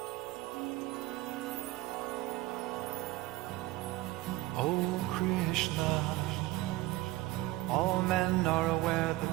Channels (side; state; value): left; quieter; 18.3 dB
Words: Oh Krishna, all men are aware